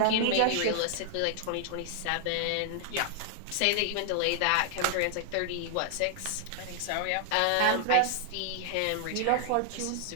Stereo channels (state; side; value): different; both; correlation 0.00